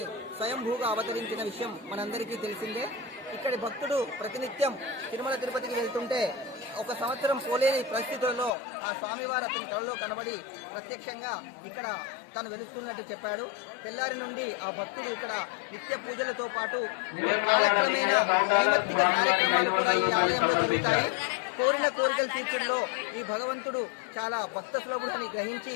స్వయంభూగా అవతరించిన విషయం మనందరికీ తెలిసిందే. ఇక్కడి భక్తుడు ప్రతినిత్యం తిరుమల తిరుపతికి వెళ్తుంటే ఒక సంవత్సరం పోలేని పరిస్థితుల్లో ఆ స్వామివారు అతని కళలో కనబడి ప్రత్యక్షంగా ఇక్కడ తను వెలుస్తున్నట్టు చెప్పాడు. తెల్లారి నుండి ఆ భక్తుడు ఇక్కడ నిత్య పూజలతో పాటు కాలక్రమేణా నైమిత్తిక కార్యక్రమాలు కూడా ఈ ఆలయంలో జరుగుతాయి. కోరిన కోరికలు తీర్చడంలో ఈ భగవంతుడు చాలా భక్త సులభుడని గ్రహించి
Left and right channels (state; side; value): drops out; right; at 8.5 s